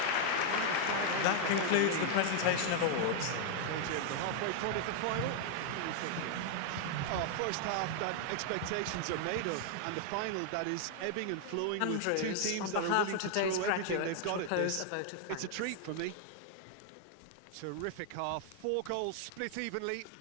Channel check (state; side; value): different; both; correlation 0.00